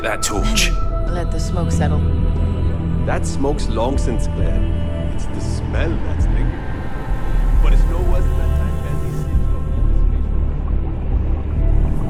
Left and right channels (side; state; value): both; identical; correlation 1.00